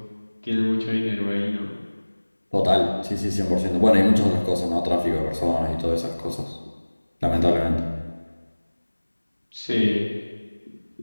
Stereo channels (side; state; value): both; inverted; correlation -1.00